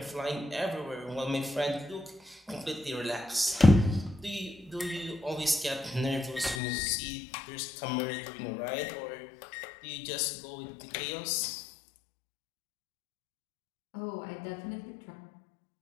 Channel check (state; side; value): drops out; right; at 6.6 s